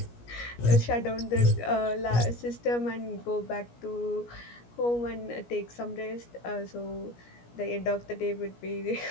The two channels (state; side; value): late; right; 17 ms